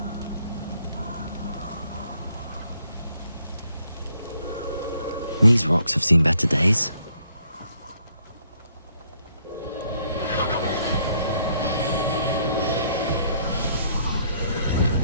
These rocks have seen better days.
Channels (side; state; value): both; inverted; correlation -0.68